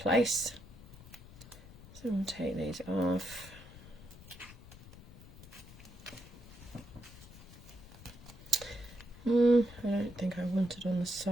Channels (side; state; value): left; noise; rumble, 17 dB below the sound